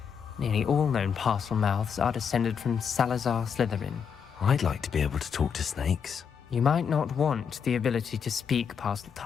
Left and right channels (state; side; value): quieter; right; 7.0 dB